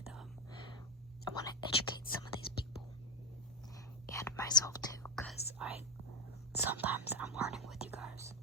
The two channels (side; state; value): both; normal; correlation 0.12